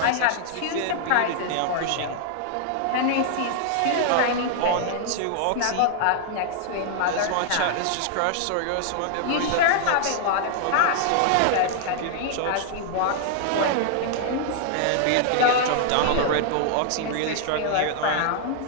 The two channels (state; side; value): different; both; correlation -0.01